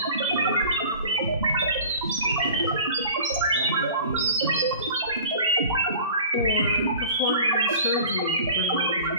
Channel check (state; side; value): inverted; both; correlation -0.42